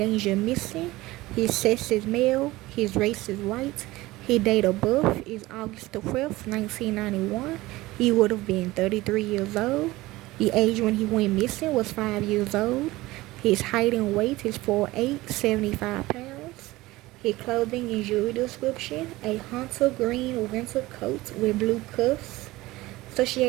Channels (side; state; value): left; quieter; 19.0 dB